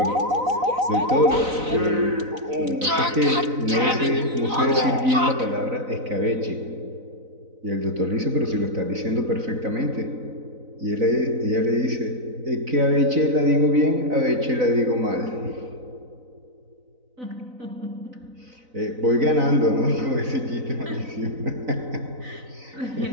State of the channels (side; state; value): left; late; 4.0 ms